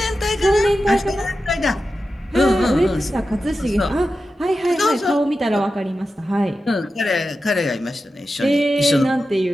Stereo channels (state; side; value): normal; both; correlation 0.92